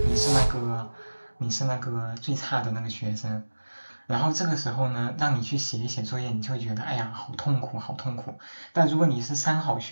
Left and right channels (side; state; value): both; inverted; correlation -1.00